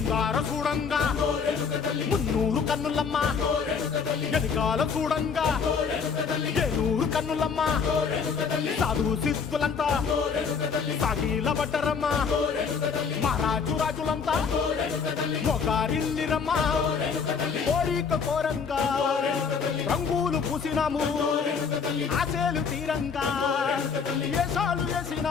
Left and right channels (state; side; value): quieter; right; 5.8 dB